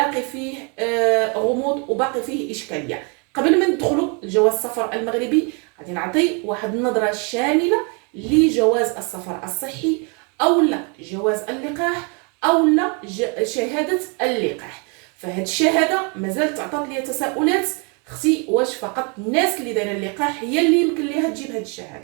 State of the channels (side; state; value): left; quieter; 34.4 dB